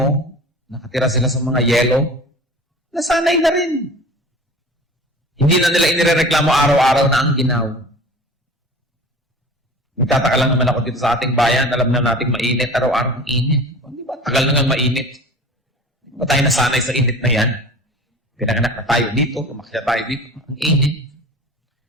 nakatira sila sa mga yelo, nasanay na rin. Hindi na nila inirereklamo araw-araw na ang ginaw. Nagtataka lang naman ako dito sa ating bayan, alam na nating mainit, araw-araw ang init. Di ba? Tagal na nga mainit. Di ba tayo nasanay sa init na yan? Pinanganak na tayo dito, tumakya tayo dito, ang init.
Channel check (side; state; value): both; normal; correlation 0.39